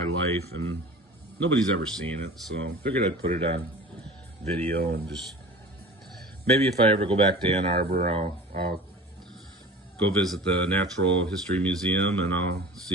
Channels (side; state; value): both; normal; correlation 0.40